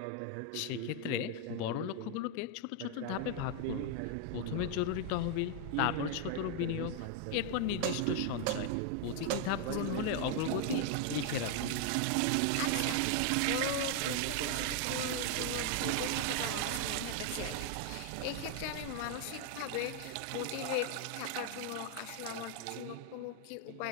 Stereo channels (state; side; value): different; both; correlation 0.00